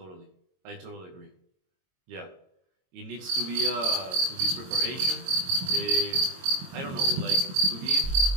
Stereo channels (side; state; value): left; late; 22 ms